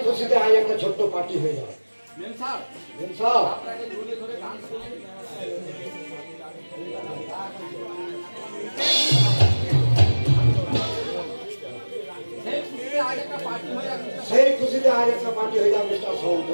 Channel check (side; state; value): both; inverted; correlation -1.00